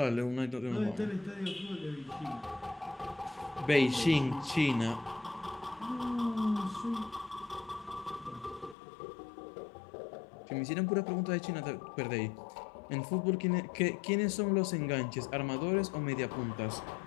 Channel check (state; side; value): drops out; right; at 8.8 s